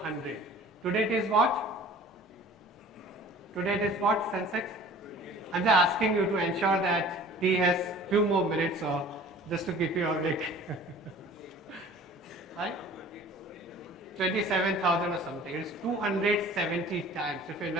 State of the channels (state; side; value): normal; both; correlation 0.46